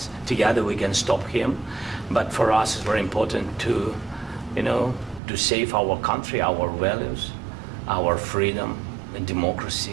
together we can stop him. But for us, it's very important to, to save our country, our values, our freedom and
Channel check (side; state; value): left; drops out; at 5.2 s